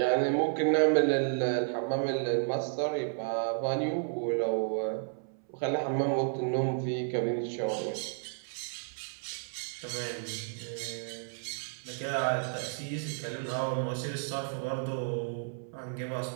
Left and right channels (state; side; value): silent; left; 56 dB below the other